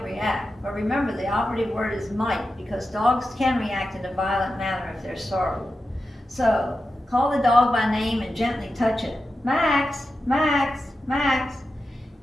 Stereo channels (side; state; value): both; normal; correlation 0.91